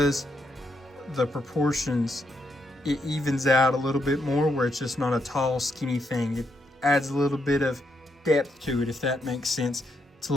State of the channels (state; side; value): normal; both; correlation 0.79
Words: the proportions, it evens out a little bit more, where it's just not a tall, skinny thing. It adds a little bit of depth to it, if that makes sense. It's a